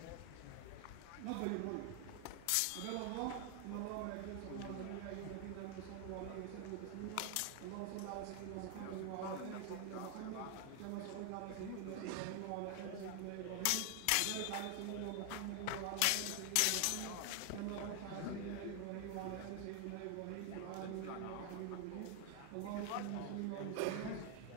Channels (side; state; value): both; different; correlation 0.00